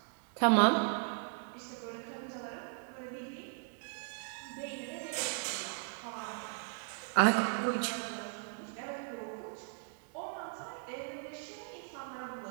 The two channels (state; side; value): silent; left; 53 dB below the other